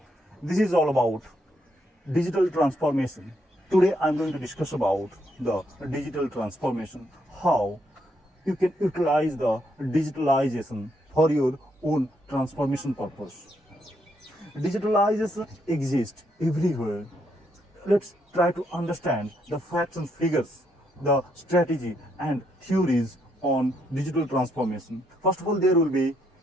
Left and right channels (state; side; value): normal; both; correlation 0.75